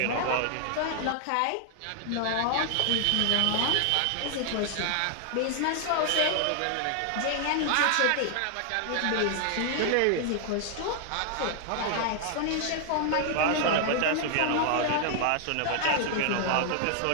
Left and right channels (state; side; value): different; both; correlation 0.00